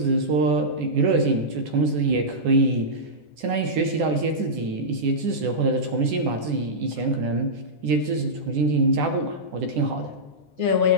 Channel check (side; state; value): left; late; 9.9 ms